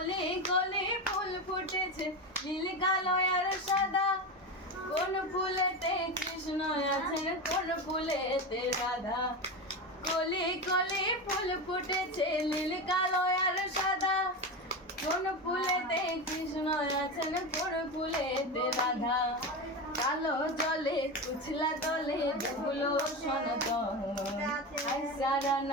কলি ফুল ফুটেছে নীল কালো আর সাদা কোন ফুলেতে কৃষ্ণ আছেন কোন ফুলেতে রাধা কলি কলি ফুল ফুটেছে নীল কালো আর সাদা কোন ফুলেতে কৃষ্ণ আছেন কোন ফুলেতে রাধা কালো জলে কুছলা তলে ডুবলো সনাতন আজ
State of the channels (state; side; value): normal; both; correlation 0.20